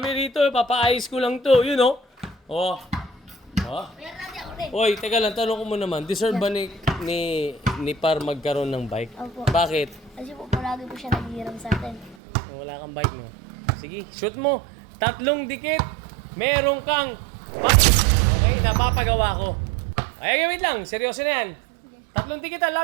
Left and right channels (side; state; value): left; drops out; at 12.2 s